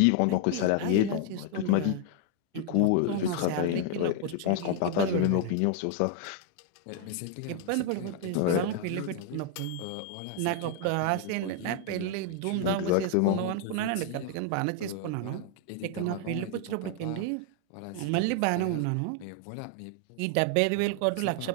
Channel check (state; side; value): different; both; correlation 0.00